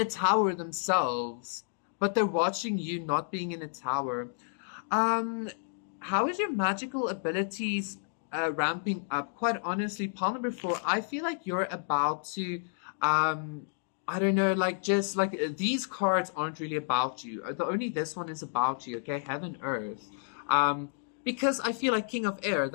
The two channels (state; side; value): silent; right; digital silence